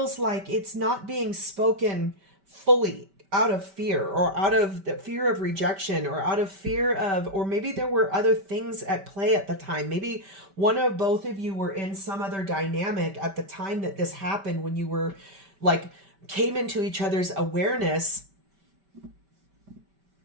like it's not being spoken fully out of fear, or out of the fear of rejection, or out of fear of, or maybe there were other things at play at the time. Maybe one of both of you were in some other dynamic at the time that this happened, when you were like, came into each other's awareness.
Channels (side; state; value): left; late; 5.1 ms